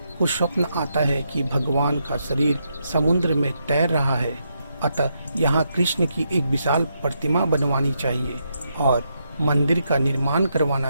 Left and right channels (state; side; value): inverted; both; correlation -0.80